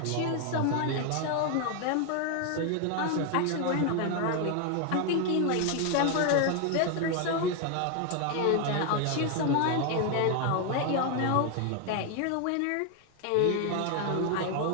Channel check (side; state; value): both; different; correlation 0.01